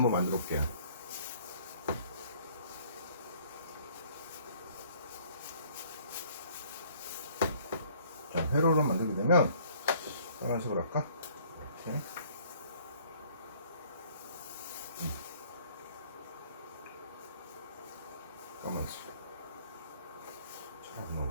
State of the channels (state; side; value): inverted; both; correlation -0.57